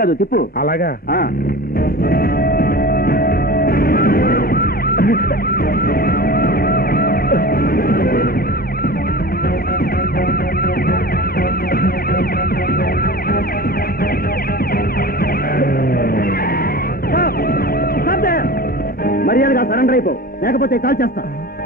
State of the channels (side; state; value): both; normal; correlation 0.35